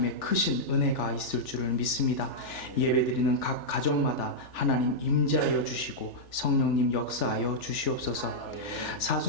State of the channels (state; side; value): late; right; 3.4 ms